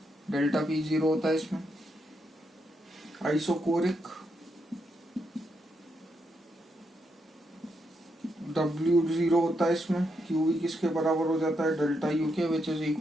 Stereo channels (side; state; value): both; normal; correlation 0.81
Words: डेल्टा P 0 होता है इसमें। आइसोकोरिक W 0 होता है इसमें। QV किसके बराबर हो जाता है, डेल्टा U के, which is